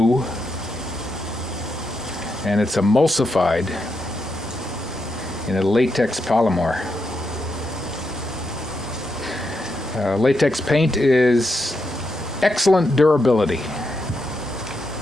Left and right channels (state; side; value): normal; both; correlation 0.83